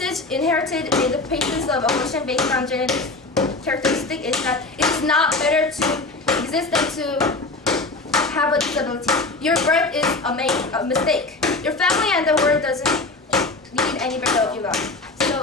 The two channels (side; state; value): right; quieter; 3.3 dB